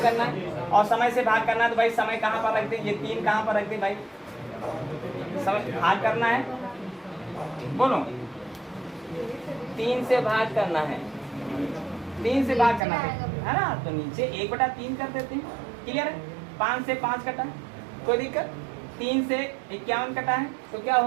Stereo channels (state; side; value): drops out; left; at 12.8 s